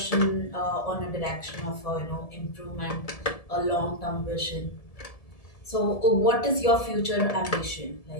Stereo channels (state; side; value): late; right; 1.7 ms